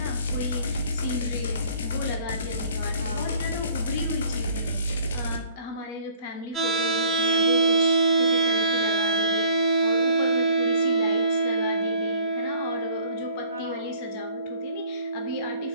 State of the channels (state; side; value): inverted; both; correlation -0.54